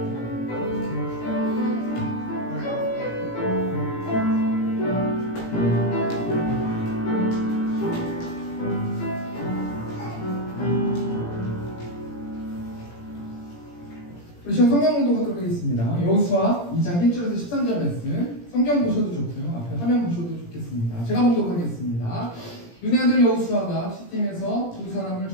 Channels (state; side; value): late; right; 17 ms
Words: 우리 지금 성경 공독하도록 하겠습니다. 여호수아 2장 1절에서 13절 말씀, 성경 보셔도 좋고요, 앞에 화면 보셔도 좋겠습니다. 제가 공독하겠습니다. 눈의 아들 여호수아가 시팀에서 두 사람을